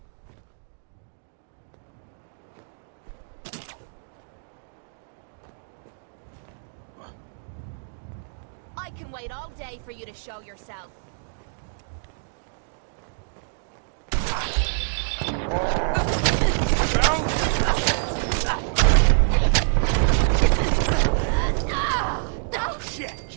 I can wait all day for you to show yourself. Oh shit,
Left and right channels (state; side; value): silent; left; digital silence